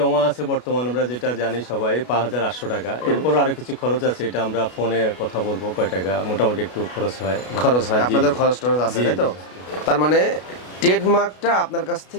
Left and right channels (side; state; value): right; late; 33 ms